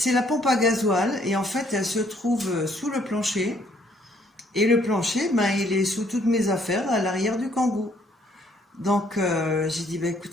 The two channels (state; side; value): normal; both; correlation 0.66